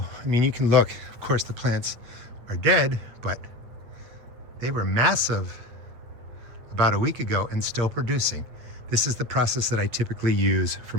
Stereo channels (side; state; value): left; late; 8.6 ms